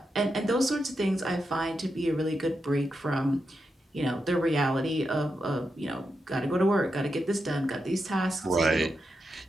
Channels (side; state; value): both; normal; correlation 0.86